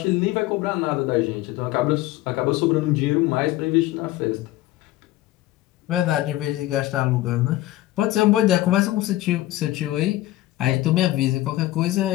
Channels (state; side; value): quieter; right; 16.2 dB